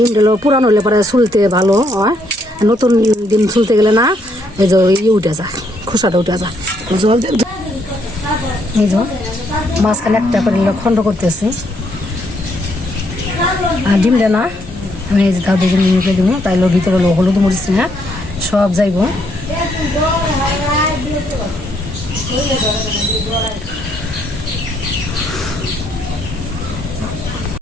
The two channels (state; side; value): normal; both; correlation 0.72